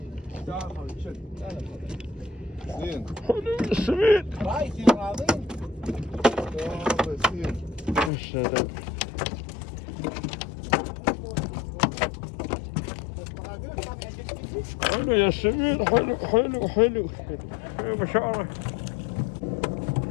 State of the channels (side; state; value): right; drops out; at 8.1 s